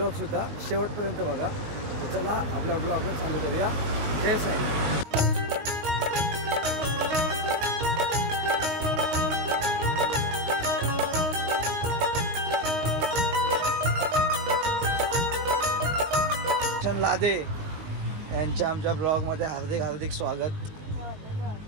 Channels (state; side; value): late; left; 19 ms